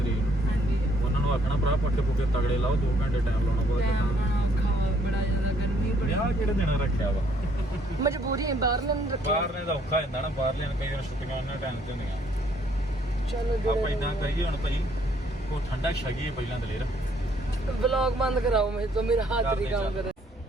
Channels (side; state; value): both; normal; correlation 0.66